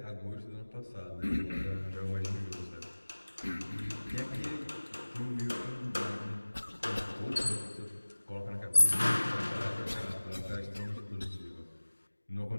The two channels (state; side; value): inverted; both; correlation -1.00